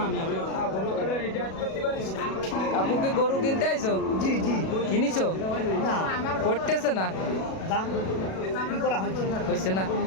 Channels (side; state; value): right; late; 37 ms